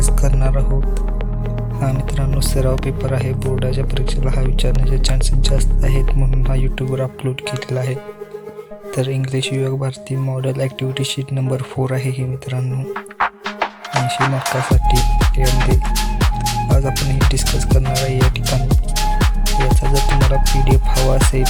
करणार आहोत. हा मित्रांनो सराव पेपर आहे. बोर्डाच्या परीक्षेला हा विचारण्याचे चान्सेस जास्त आहेत, म्हणून हा यूट्यूबवर अपलोड केलेला आहे. तर इंग्लिश विभाग भारती मॉडेल ॲक्टिव्हिटी शीट नंबर 4 आहे ही मित्रांनो, 80 मार्कासाठी. त्यामध्ये आज आपण हे डिस्कस करणार आहे. या ठिकाणी याचा जर तुम्हाला PDF हवा असेल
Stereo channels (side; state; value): both; identical; correlation 1.00